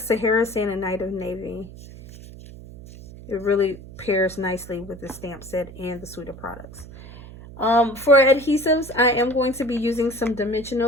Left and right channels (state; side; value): noise; right; hum, 16 dB below the sound